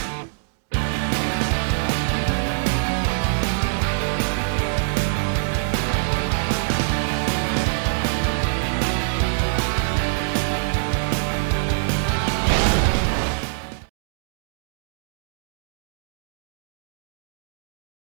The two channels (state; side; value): silent; left; digital silence